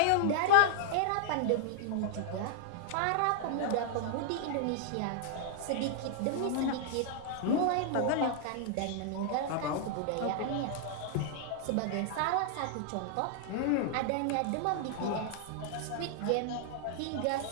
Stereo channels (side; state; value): both; different; correlation -0.01